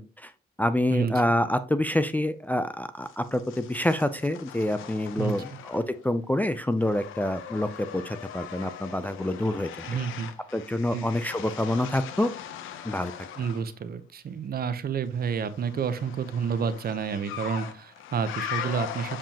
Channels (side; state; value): both; normal; correlation 0.77